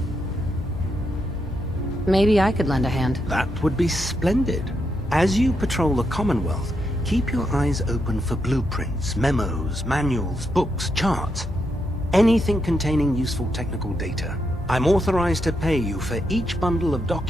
Maybe I could lend a hand. That would be splendid. As you patrol the Commonwealth, keep your eyes open for blueprints, memos, manuals, books, charts. Anything containing useful technical data. I'm authorized to pay you for each bundle of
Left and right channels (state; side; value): normal; both; correlation 0.81